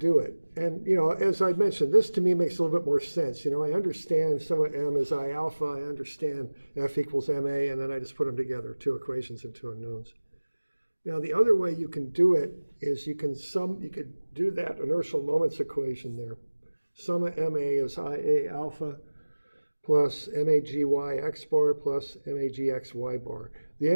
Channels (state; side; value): inverted; both; correlation -1.00